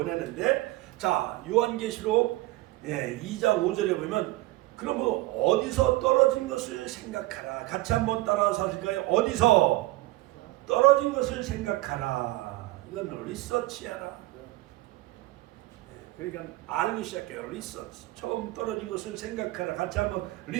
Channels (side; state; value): left; quieter; 19.2 dB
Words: 자, 요한계시록 2장 5절에 보면, 그러므로 어디서 떨어진 것을 생각하라. 같이 한번 따라서 하실까요? 어디서 떨어진 것을 생각하라. 이건 리서치하라. 그러니까 알기 시작해요. 리서치. 처음 떨어진 것을 생각하라. 같이 한번